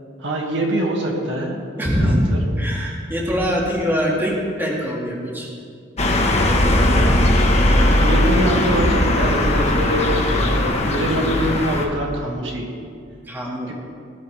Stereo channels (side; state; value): both; normal; correlation 0.61